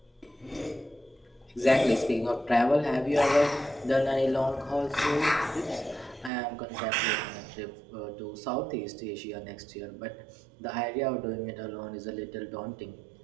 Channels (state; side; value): drops out; left; at 6.3 s